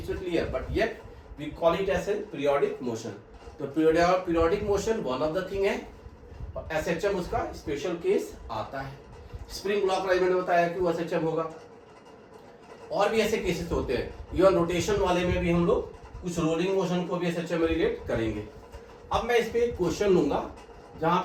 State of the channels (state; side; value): identical; both; correlation 1.00